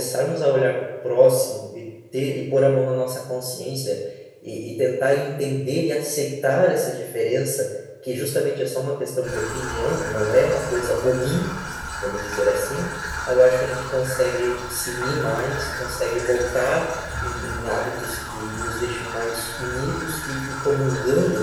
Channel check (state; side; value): identical; both; correlation 1.00